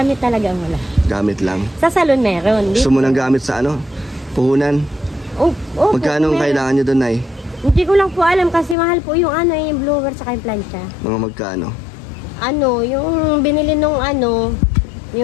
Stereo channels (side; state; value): right; drops out; at 8.8 s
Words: talaga ang wala. Gamit lang? Sa salon meron. Gusto mo nang gamit sa Puhunan? Magkano kailangan nyo doon, Nay? Hindi ko lang po alam kasi mahal po yung yung blower sa yung plancha. Mga magkano? Yung binili nung